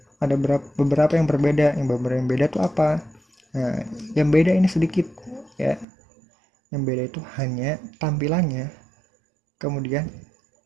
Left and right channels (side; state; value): left; drops out; at 5.9 s